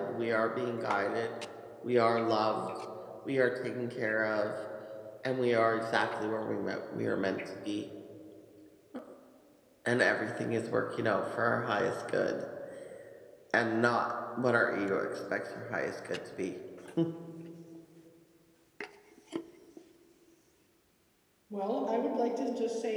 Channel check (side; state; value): both; identical; correlation 1.00